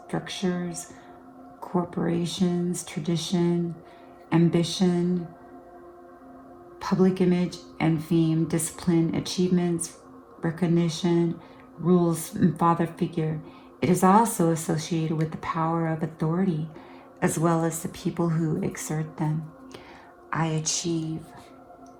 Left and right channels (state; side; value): identical; both; correlation 1.00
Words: corporations, tradition, ambition, public image and fame, discipline, achievements, recognition, rules, and father figure. It is also associated with the power of authority, as well as the people who exert them. I achieve.